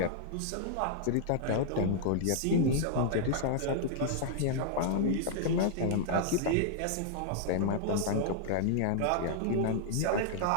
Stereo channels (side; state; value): both; different; correlation -0.01